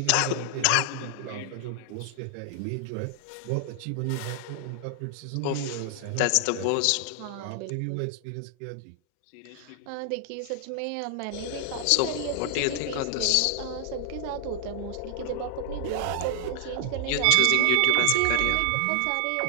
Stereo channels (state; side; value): different; both; correlation 0.00